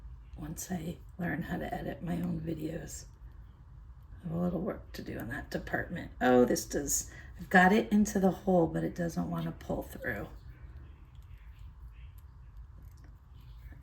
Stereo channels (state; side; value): identical; both; correlation 1.00